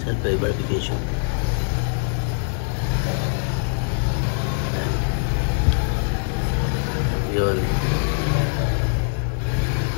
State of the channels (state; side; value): silent; right; digital silence